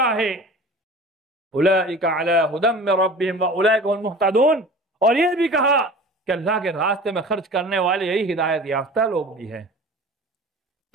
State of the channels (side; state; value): both; normal; correlation 0.40